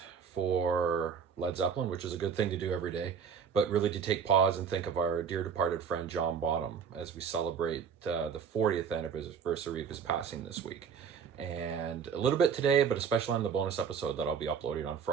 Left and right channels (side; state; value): left; quieter; 6.8 dB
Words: for Led Zeppelin, which is a good thing to do every day, but really to take pause and think of our dear departed friend John Bonham as we celebrate the 40th anniversary of his passing this week. And a little bit today, but especially on the bonus episode that I'll be uploading on